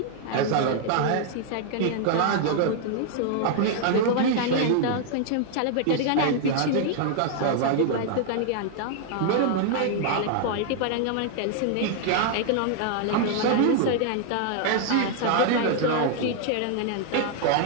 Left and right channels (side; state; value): both; different; correlation 0.00